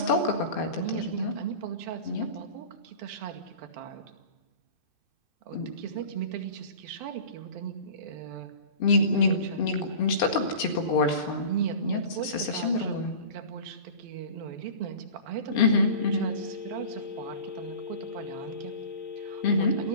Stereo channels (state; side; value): late; right; 2.6 ms